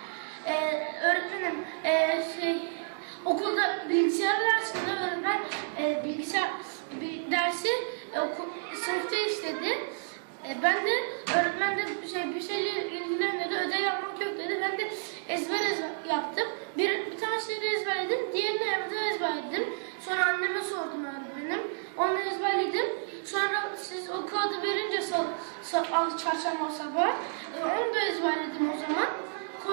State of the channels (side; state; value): left; silent; digital silence